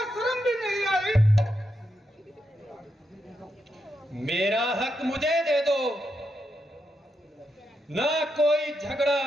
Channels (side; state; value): both; normal; correlation 0.84